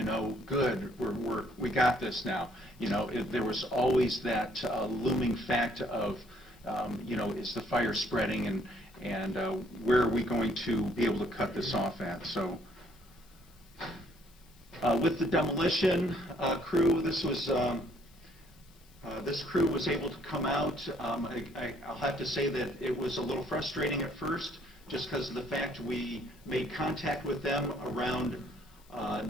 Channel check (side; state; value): left; noise; hiss, 28 dB below the sound